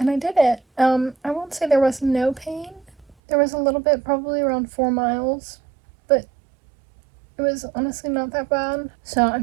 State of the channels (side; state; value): left; drops out; at 3.2 s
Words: I did it. I won't say there was no pain. There was a little bit, probably around 4 miles, but it was honestly not that bad. So